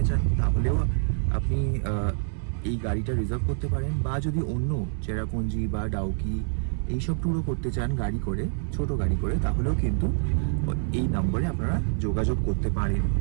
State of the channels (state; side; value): silent; left; 61 dB below the other